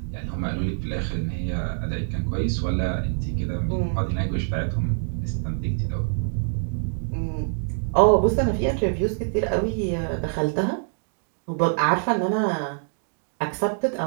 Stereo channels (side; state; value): left; silent; digital silence